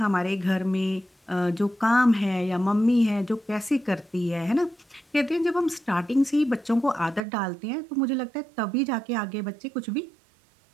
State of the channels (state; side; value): drops out; left; at 7.2 s